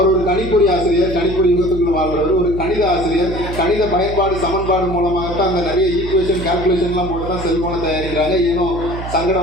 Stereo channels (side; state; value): right; noise; hum, 8 dB below the sound